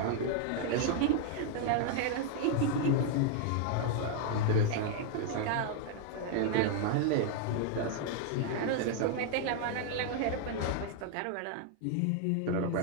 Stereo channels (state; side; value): different; both; correlation 0.00